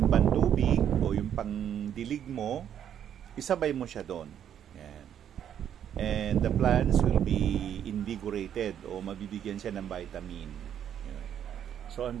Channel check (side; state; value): left; quieter; 9.6 dB